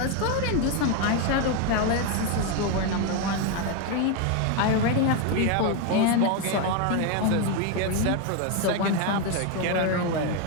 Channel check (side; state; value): both; different; correlation 0.01